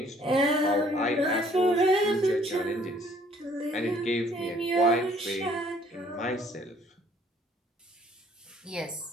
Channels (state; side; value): normal; both; correlation 0.60